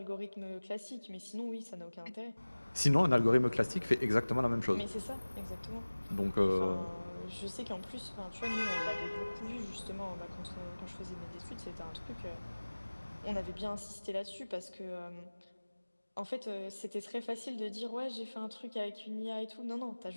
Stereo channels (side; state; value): both; inverted; correlation -1.00